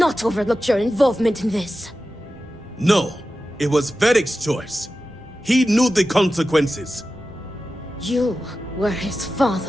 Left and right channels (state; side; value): normal; both; correlation 0.93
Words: overlooked your involvement in this. No, it was Vaeric's choice. He knew the consequences. You were his